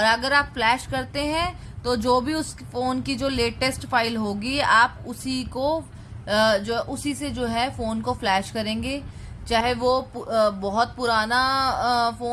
अगर आप फ्लैश करते हैं तो जो भी उस फोन की जो लेटेस्ट फाइल होगी आप उसी को उसी से जो है फोन को फ्लैश करेंगे, चाहे वो बहुत पुराना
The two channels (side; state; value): both; identical; correlation 1.00